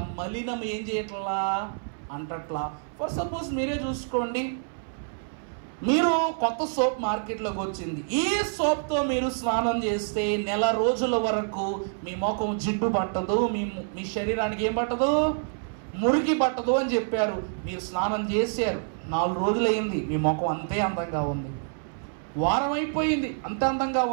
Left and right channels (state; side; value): silent; left; 60 dB below the other